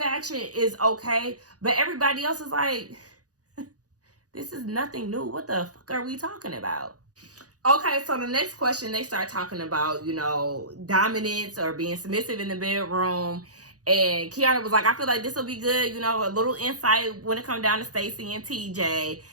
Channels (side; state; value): left; late; 0.67 ms